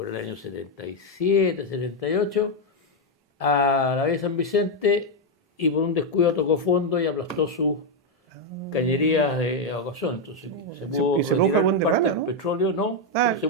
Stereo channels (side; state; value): both; normal; correlation 0.02